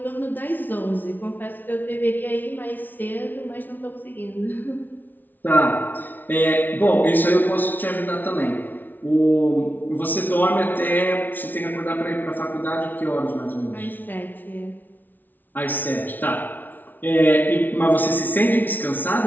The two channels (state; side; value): late; right; 0.085 ms